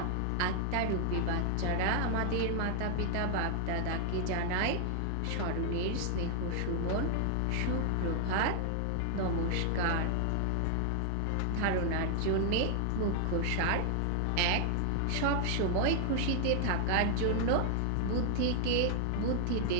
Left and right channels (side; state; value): both; different; correlation 0.00